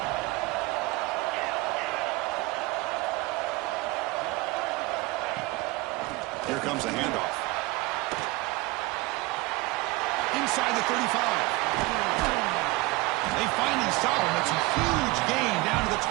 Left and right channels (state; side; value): quieter; left; 22.4 dB